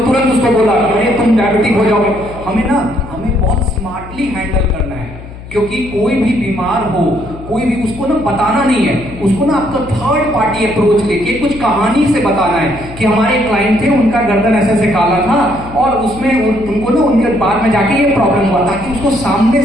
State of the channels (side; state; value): left; noise; hum, 15 dB below the sound